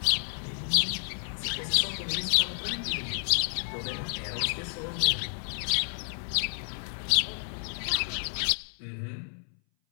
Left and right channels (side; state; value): right; silent; 58 dB below the other